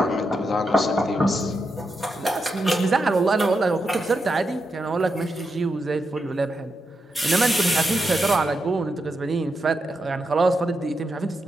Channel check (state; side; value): normal; both; correlation 0.85